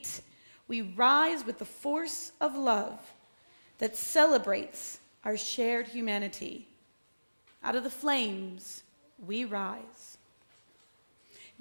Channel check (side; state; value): both; inverted; correlation -1.00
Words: we rise with the force of love that celebrates our shared humanity. Out of the flames, we rise.